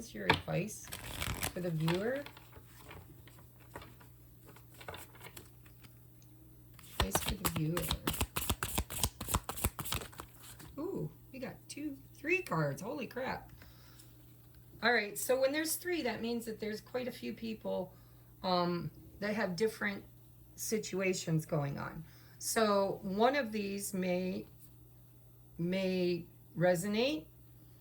your advice for the viewer? Advice for the viewer. Ooh, we got 3 cards. Holy crap. All right, so when there's 3, that means that there's quite a few people that have different situations going on. So one of these may resonate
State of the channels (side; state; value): both; identical; correlation 1.00